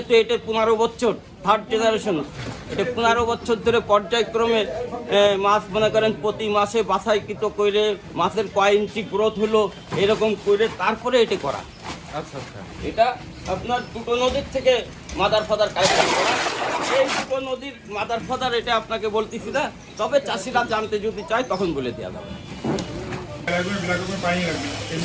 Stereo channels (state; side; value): identical; both; correlation 1.00